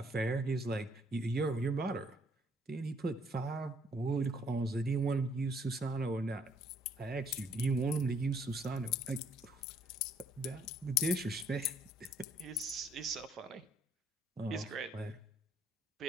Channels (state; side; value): normal; both; correlation 0.65